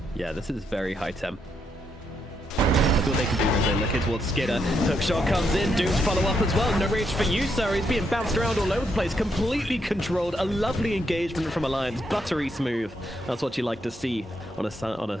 Yeah, this is very high temp. That's what they can do as they look in towards Skidder. Hookshot comes in, Doom's follow up as well. No rage for you, sir. He's being bounced around all over the place, completely controlled. A lovely engagement from Alliance, buttery smooth. That's what you like to see on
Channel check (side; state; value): both; normal; correlation 0.78